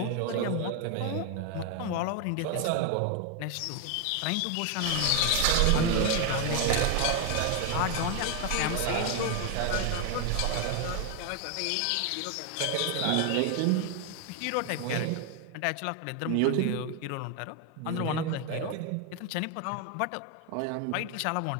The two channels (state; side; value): different; both; correlation 0.01